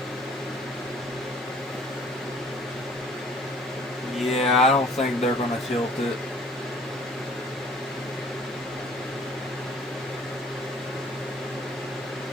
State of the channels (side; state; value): right; noise; hiss, 29 dB below the sound